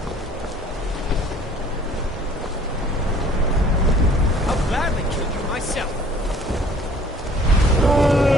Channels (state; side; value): normal; both; correlation 0.54